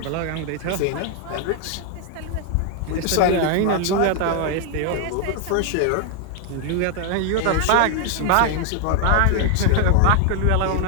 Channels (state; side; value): different; both; correlation 0.00